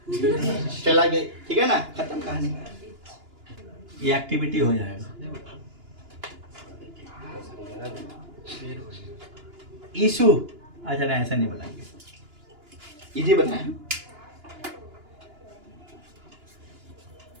चला गई। ठीक है ना? खत्म कहानी। ये एक्टिविटी हो जाएगा। इशू अच्छा नहीं, ऐसा नहीं बताएंगे, इजी बताएं।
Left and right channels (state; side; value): late; left; 2.9 ms